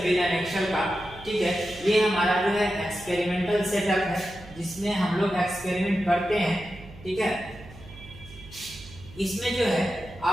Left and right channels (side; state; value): right; noise; hum, 19 dB below the sound